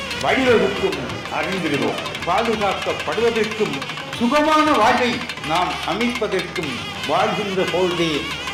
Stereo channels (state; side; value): identical; both; correlation 1.00